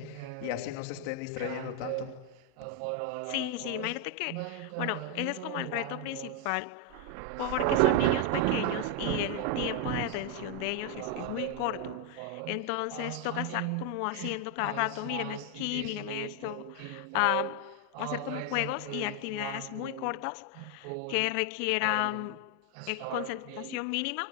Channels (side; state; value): both; different; correlation 0.00